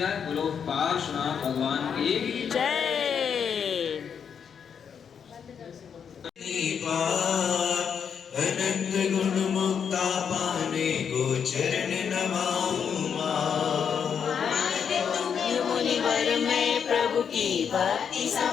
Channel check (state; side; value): quieter; right; 7.3 dB